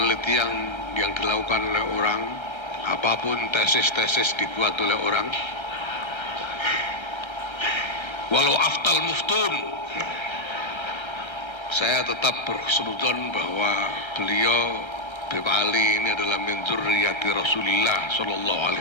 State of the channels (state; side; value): late; right; 1.3 ms